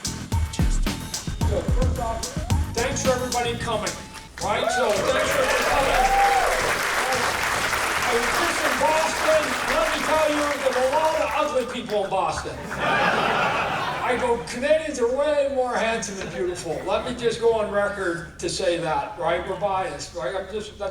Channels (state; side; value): identical; both; correlation 1.00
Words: first off, thanks for everybody coming, right? So thanks for everybody coming. I was just in Boston. Let me tell you, there were a lot of ugly people in Boston. I go, Canadians are way more handsome and beautiful. Let me just go on record to say that, right? We're biased, right?